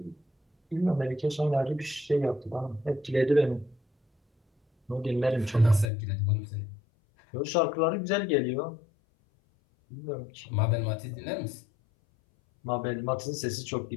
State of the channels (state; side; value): drops out; right; at 5.9 s